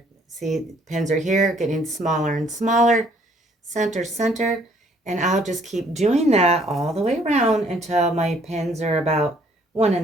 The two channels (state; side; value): normal; both; correlation 0.63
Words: See, the pins are here, getting smaller and smaller. Center, center. And I'll just keep doing that all the way around until my pins are about